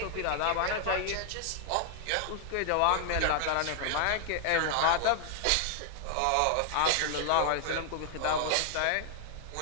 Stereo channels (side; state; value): both; different; correlation 0.00